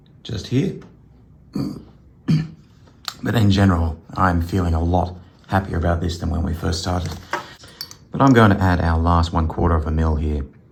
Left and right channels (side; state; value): both; identical; correlation 1.00